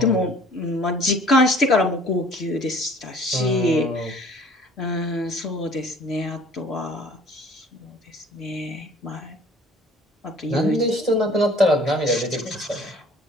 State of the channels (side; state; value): both; normal; correlation 0.52